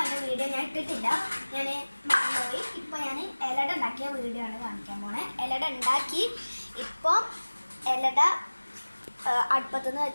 വീഡിയോ ഞാൻ ഇട്ടിട്ടില്ല, ഞാൻ മറന്നുപോയി. ഇപ്പോൾ ഞാൻ ഇലട ഉണ്ടാക്കിയ വീഡിയോ ആണ് കാണിക്കാൻ പോണേ. ഇലട ഉണ്ടാക്കി ഇപ്പോൾ ഇലട അടുപ്പത്തുനിന്ന്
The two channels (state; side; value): inverted; both; correlation -1.00